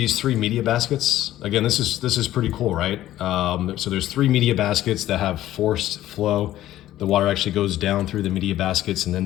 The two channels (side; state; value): right; quieter; 13.8 dB